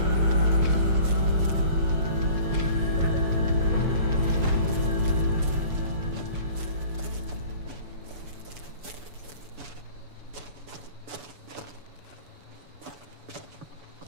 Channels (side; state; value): left; late; 7.0 ms